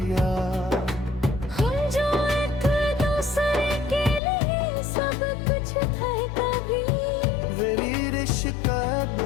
हम जो एक दूसरे के लिए सब कुछ थे कभी, मेरी रिश्क अब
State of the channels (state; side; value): drops out; right; at 4.2 s